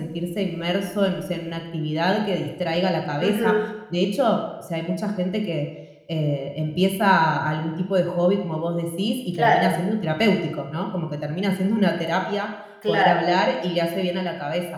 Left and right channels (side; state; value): both; identical; correlation 1.00